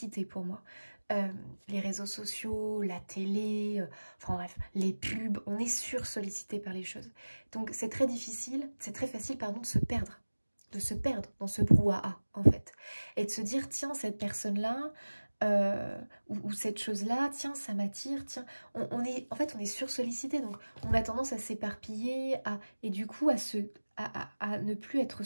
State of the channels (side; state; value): both; inverted; correlation -1.00